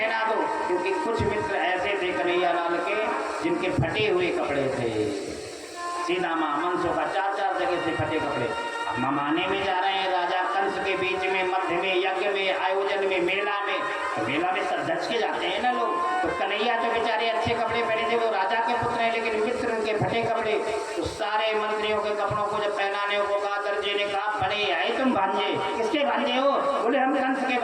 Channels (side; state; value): both; identical; correlation 1.00